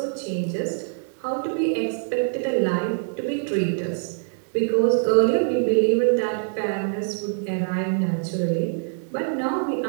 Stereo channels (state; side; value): silent; left; digital silence